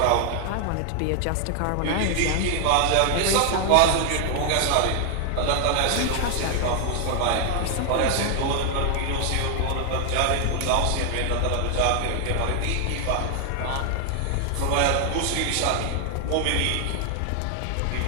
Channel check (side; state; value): both; different; correlation 0.00